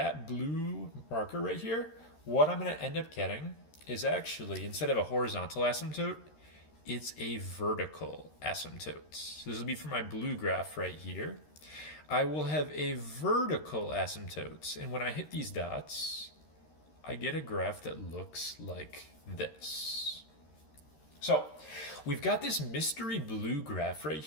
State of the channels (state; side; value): late; right; 13 ms